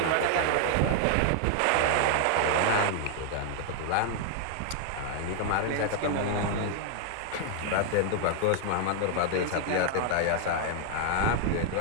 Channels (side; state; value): both; different; correlation 0.00